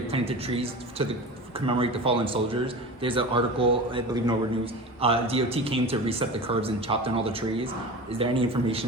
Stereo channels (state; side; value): normal; both; correlation 0.32